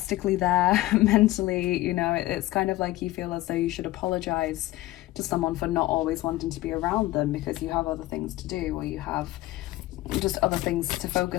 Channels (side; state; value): right; quieter; 17.4 dB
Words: there mentally. You know, it's kind of like you feel as though you should apologize to someone for not always wanting to be around them, because you have other things to do, or you have just other things to